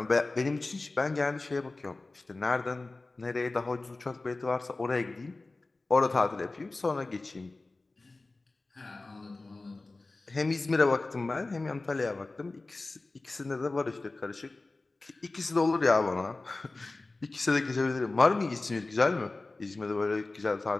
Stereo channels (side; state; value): right; quieter; 3.3 dB